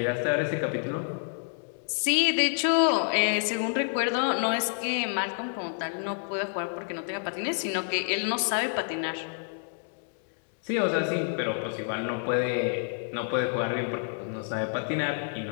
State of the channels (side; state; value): right; silent; 59 dB below the other